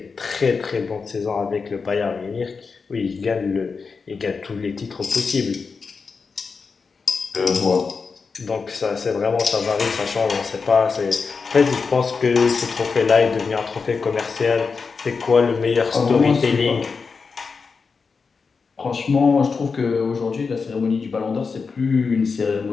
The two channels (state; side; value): quieter; right; 5.0 dB